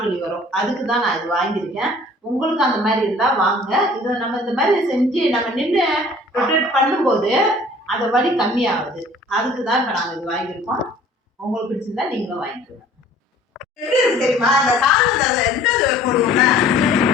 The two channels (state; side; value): normal; both; correlation 0.51